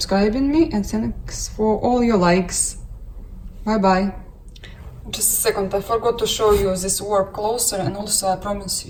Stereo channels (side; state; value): both; identical; correlation 1.00